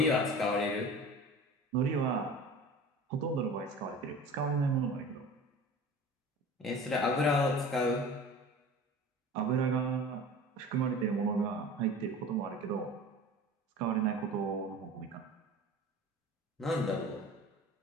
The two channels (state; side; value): normal; both; correlation 0.39